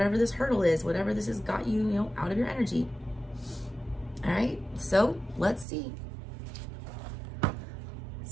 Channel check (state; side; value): drops out; left; at 5.7 s